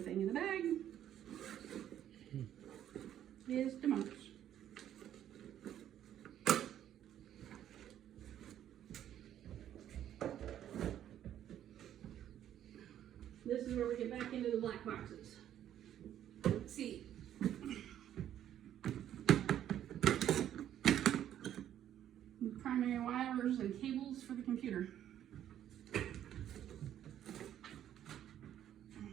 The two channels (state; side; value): quieter; left; 11.0 dB